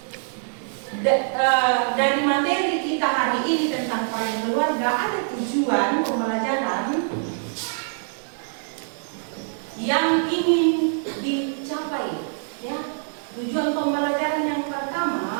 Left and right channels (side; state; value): left; silent; digital silence